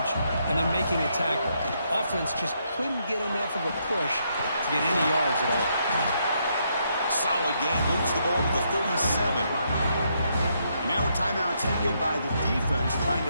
and then making a tackle. Offense just couldn't get enough of a push to get any yards at all. Solid game, moves the ball to the 37. And now a timeout taken by the defense, trying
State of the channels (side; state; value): both; inverted; correlation -0.76